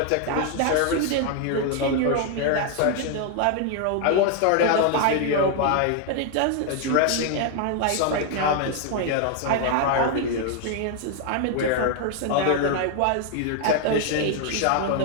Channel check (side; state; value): both; different; correlation 0.00